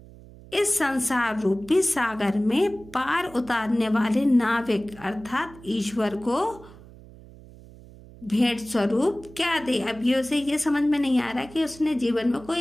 इस संसार रूपी सागर में पार उतारने वाले नाविक अर्थात ईश्वर को भेंट स्वरूप क्या दे। अब ये उसे ये समझ में नहीं आ रहा कि उसने जीवन में कोई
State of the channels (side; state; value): right; noise; hum, 20 dB below the sound